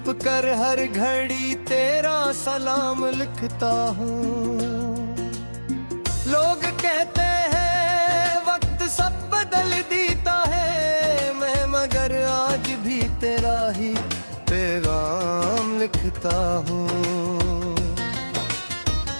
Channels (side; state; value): both; inverted; correlation -1.00